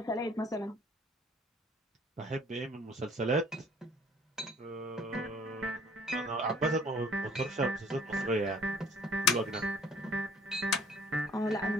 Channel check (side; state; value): both; normal; correlation 0.55